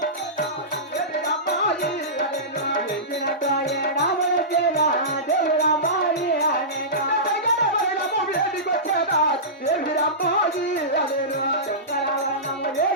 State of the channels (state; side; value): normal; both; correlation -0.19